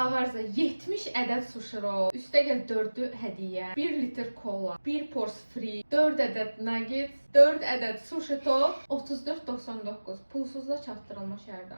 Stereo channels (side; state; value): both; inverted; correlation -1.00